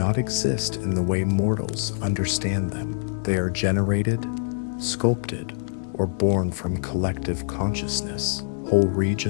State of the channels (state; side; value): silent; right; digital silence